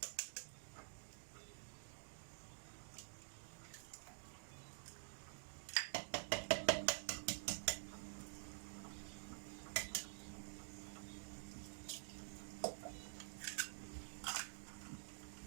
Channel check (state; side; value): silent; left; digital silence